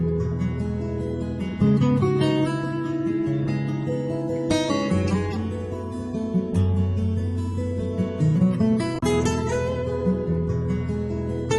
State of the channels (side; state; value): both; identical; correlation 1.00